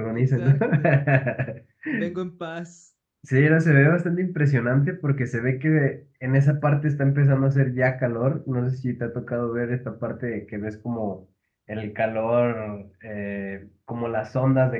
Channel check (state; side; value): identical; both; correlation 1.00